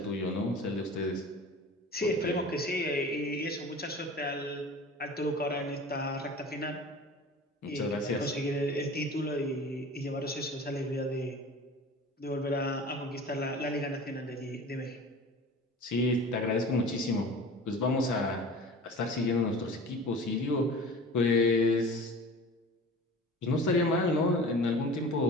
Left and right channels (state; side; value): normal; both; correlation 0.39